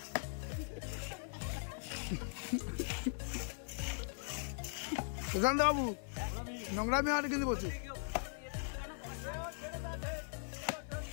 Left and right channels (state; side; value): silent; right; 51 dB below the other